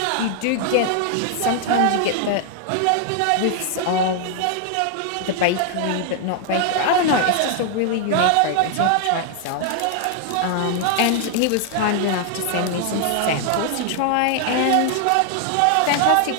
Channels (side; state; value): both; different; correlation 0.00